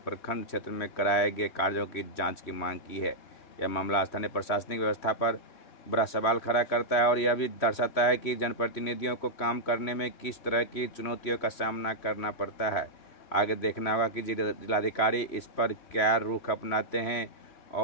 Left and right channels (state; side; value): late; right; 3.1 ms